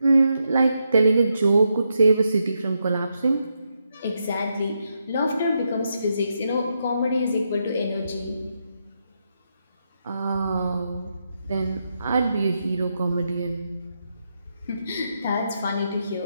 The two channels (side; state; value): both; inverted; correlation -0.82